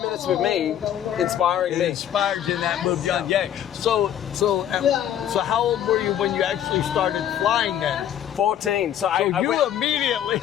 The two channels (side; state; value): right; quieter; 10.5 dB